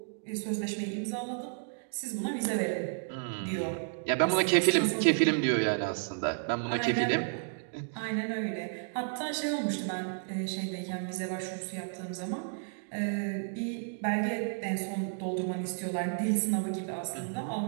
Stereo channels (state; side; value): silent; left; digital silence